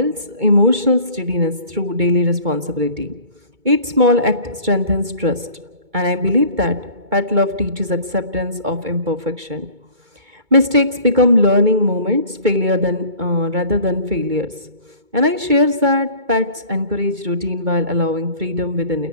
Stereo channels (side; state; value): left; late; 2.2 ms